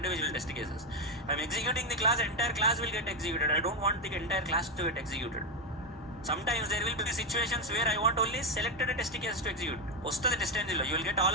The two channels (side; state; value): both; normal; correlation 0.08